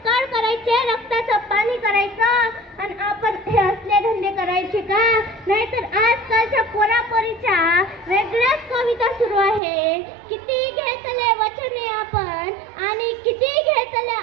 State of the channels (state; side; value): drops out; left; at 9.6 s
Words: कळ करायचे, रक्ताचं पाणी करायचं, आणि आपण हे असले धंदे करायचे का. नाहीतर आजकालच्या पोरापोरीच्या वेगळ्याच कविता सुरू आहे. किती घेतले वचने आपण आणि किती घेतल्या